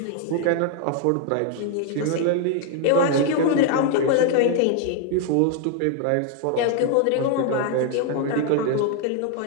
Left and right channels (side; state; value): both; different; correlation 0.00